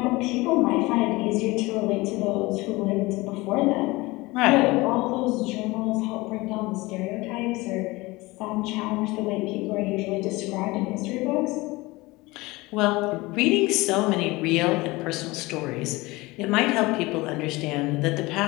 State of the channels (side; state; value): right; quieter; 21.9 dB